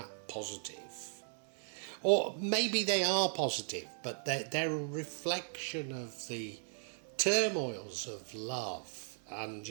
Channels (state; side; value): silent; left; digital silence